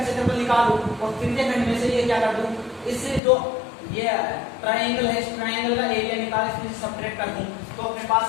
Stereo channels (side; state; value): right; drops out; at 3.2 s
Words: क्षेत्रफल निकालूं और त्रिज्या खंड में से ये क्या कर दूं, इससे जो ये ट्रायंगल है इस ट्रायंगल का एरिया निकाल इसमें सब्ट्रैक्ट कर दूं, तो अपने